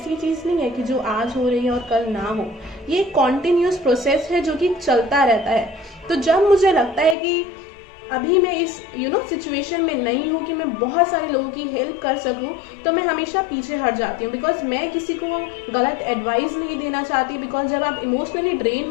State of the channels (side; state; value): right; drops out; at 7.2 s